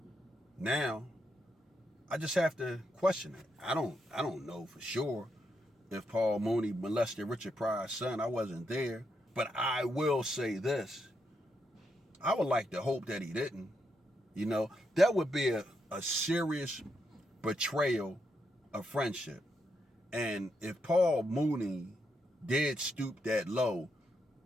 now I just have to question it. I don't know for sure if Paul Mooney molested Richard Pryor's son. I wasn't there, but I will say this: I would like to hope that he didn't. You know, that would be a serious betrayal of friendship. And if Paul Mooney did stoop that low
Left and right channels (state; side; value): normal; both; correlation 0.81